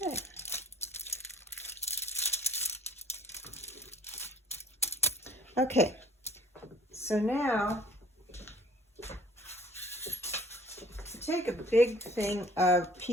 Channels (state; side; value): normal; both; correlation 0.53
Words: Okay. Okay, so now take a big thing, a